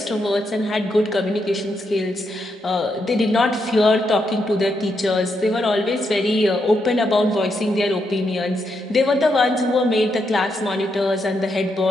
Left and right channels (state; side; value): normal; both; correlation 0.80